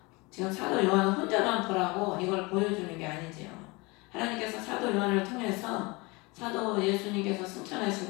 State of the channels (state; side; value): quieter; right; 25.6 dB